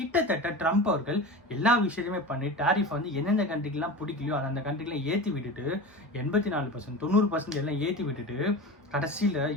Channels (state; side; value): normal; both; correlation 0.30